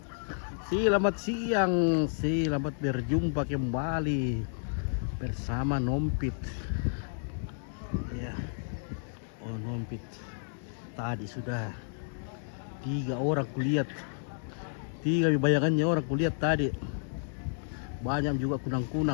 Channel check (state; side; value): silent; right; digital silence